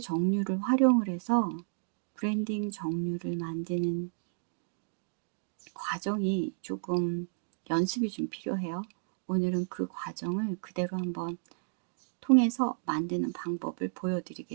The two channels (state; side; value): silent; left; digital silence